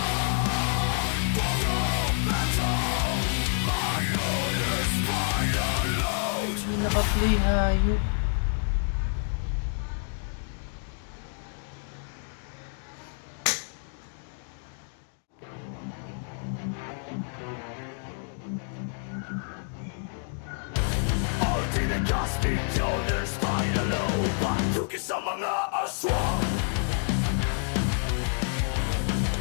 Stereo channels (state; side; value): silent; right; 58 dB below the other